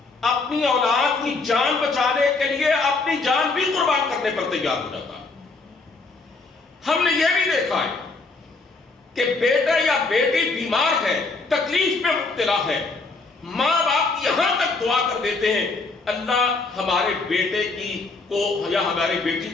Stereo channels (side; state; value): right; quieter; 3.8 dB